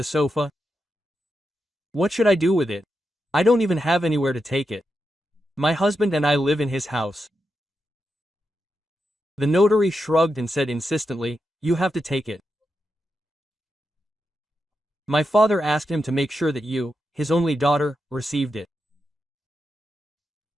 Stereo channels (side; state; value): both; normal; correlation 0.87